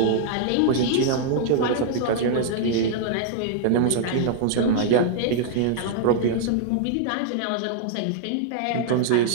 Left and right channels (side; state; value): both; different; correlation -0.01